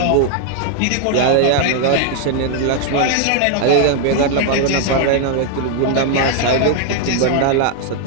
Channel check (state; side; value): different; both; correlation 0.00